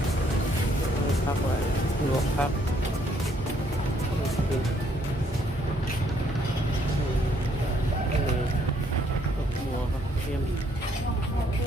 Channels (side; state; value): both; normal; correlation 0.68